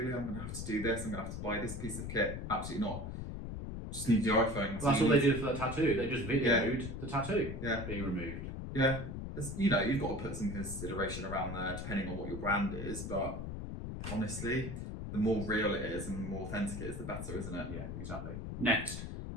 I'm gonna have to do this. I'm gonna have to buy this piece of kit. Absolutely not. Just need your iPhone. Well, that's all they did for the tattoo. They just videoed the tattoo being removed. Yeah, you've got to put some consideration around there, depending on what your brand is, but. Honestly, the more real it is and the more authentic it is, the better, isn't it? Yeah, exactly. Next,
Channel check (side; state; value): left; noise; rumble, 6 dB below the sound